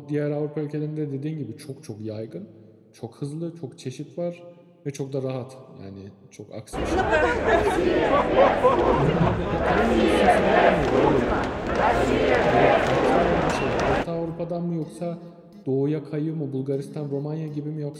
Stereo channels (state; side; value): identical; both; correlation 1.00